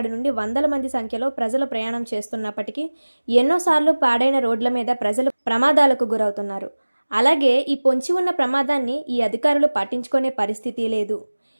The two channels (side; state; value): both; inverted; correlation -1.00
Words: నుండి వందల మంది సంఖ్యలో ప్రజలు ప్రయాణం చేస్తున్నప్పటికీ ఎన్నోసార్లు పాడైన రోడ్ల మీద ప్రజలు ప్రమాదాలకు గురవుతున్నారు. అలాగే ఈ పొంచి ఉన్న ప్రమాదాన్ని ఈ అధికారులు పట్టించుకునే పరిస్థితి లేదు.